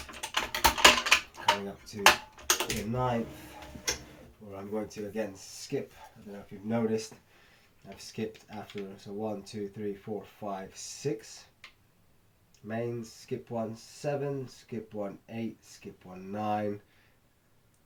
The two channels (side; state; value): both; identical; correlation 1.00